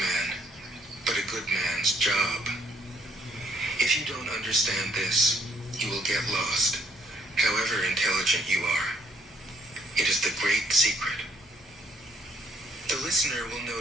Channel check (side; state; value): both; normal; correlation 0.66